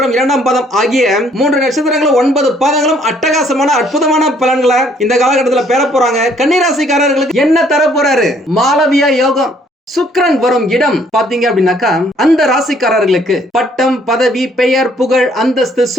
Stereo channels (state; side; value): normal; both; correlation 0.63